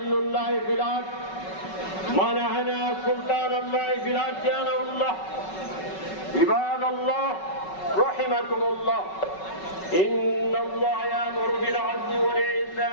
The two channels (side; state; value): right; late; 5.3 ms